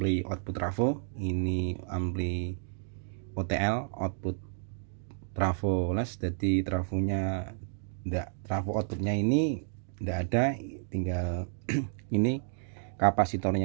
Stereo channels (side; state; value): left; silent; 57 dB below the other